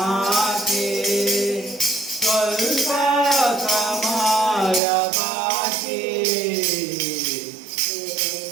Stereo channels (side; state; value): left; drops out; at 4.8 s